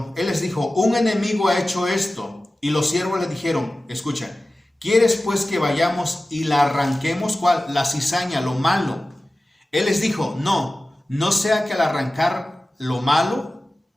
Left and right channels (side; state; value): both; normal; correlation 0.96